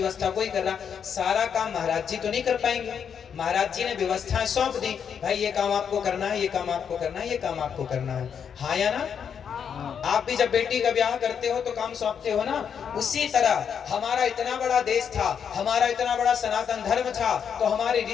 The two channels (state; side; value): quieter; right; 7.5 dB